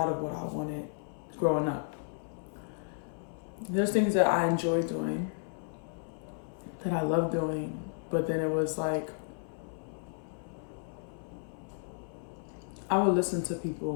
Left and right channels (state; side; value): silent; right; 56 dB below the other